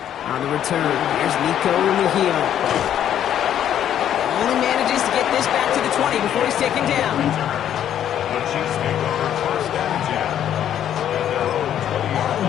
On the return, here's Nico Mejia. Only manages to get this back to the 20 before he's taken down.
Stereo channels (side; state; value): right; quieter; 10.3 dB